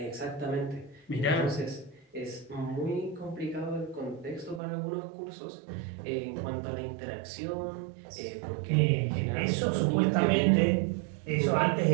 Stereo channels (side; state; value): left; drops out; at 4.6 s